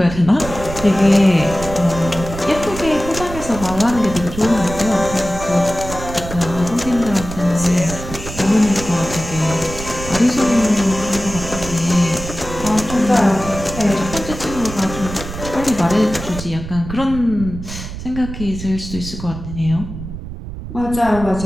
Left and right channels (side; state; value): right; noise; rumble, 10 dB below the sound